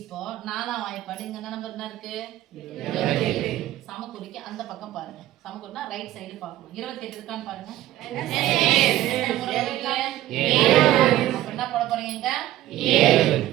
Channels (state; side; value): quieter; left; 14.4 dB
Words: 4ஆம் வாய்ப்பாடு இங்க என்ன நம்பர் என்ன இருக்கு? 28. சமக்குறிக்கு அந்த பக்கம் பாருங்க. சமக்குறினா ரைட் சைடு பார்க்கணும். 28 இருக்கான்னு பாருங்க. அப்ப என்ன போட போறீங்க? 7.